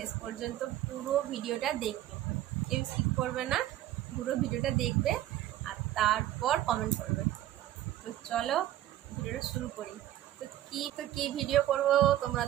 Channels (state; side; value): quieter; left; 13.5 dB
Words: পর্যন্ত পুরো ভিডিওটা দেখবে, কেউ স্কিপ করবে না, পুরো ভিডিওটা দেখবে আর তারপর কমেন্ট করবে। তো চলো ভিডিওটা শুরু করি। তো কি ভিডিও করব তোমরা